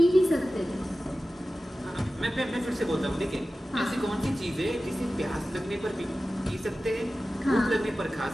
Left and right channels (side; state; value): both; normal; correlation 0.95